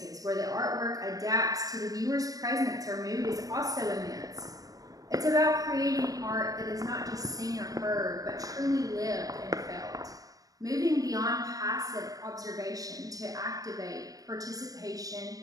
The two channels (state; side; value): late; left; 0.17 ms